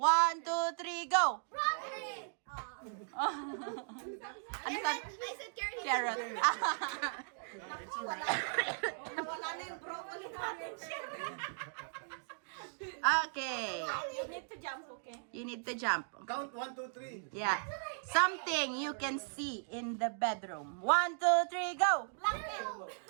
2, 3, go! Broccoli! Ano sabi? I said carrot. Carrot. Wala na yung broccoli natin. Okay. You need to jump, okay? You need to jump. Count 1, 2, 3. Yeah. Something you can see in the bedroom. 1, 2, 3, go! Blanket.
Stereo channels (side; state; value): left; silent; digital silence